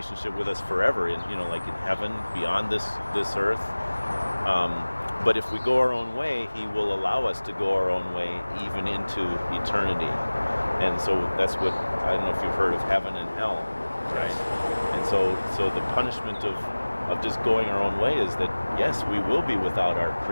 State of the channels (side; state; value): both; inverted; correlation -1.00